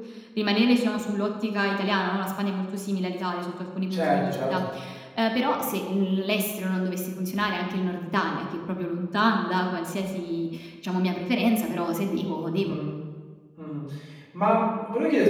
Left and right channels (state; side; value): identical; both; correlation 1.00